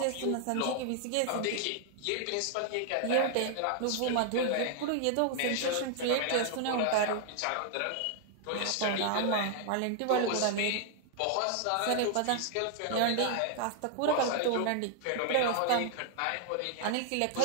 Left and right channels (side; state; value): both; different; correlation 0.00